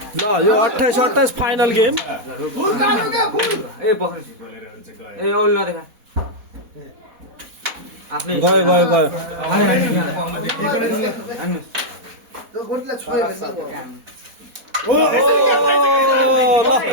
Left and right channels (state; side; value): late; left; 4.1 ms